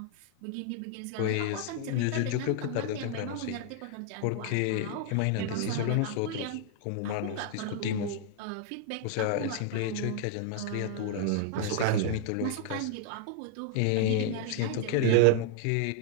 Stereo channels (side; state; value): both; different; correlation 0.00